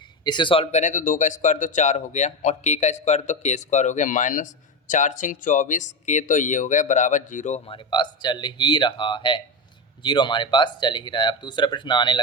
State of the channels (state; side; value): normal; both; correlation 0.15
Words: इसे सॉल्व करें तो 2 का स्क्वायर तो 4 हो गया और के का स्क्वायर तो k² हो गया, -4 × 24 के तो ये हो गया बराबर 0 हमारे पास चल ही रहा है। 0 हमारे पास चल ही रहा है। अब दूसरा प्रश्न आने